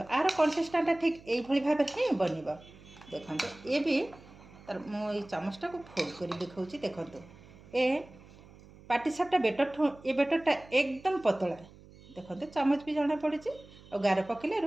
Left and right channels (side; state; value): right; noise; hum, 22 dB below the sound